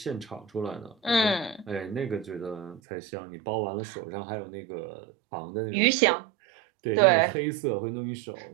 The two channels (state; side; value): drops out; left; at 2.8 s